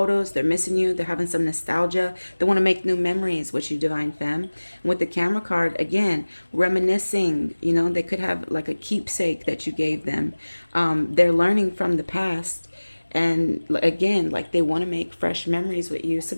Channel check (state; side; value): inverted; both; correlation -1.00